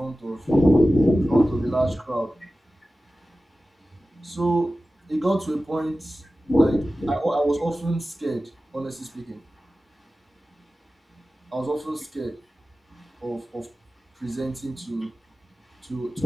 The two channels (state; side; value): normal; both; correlation 0.95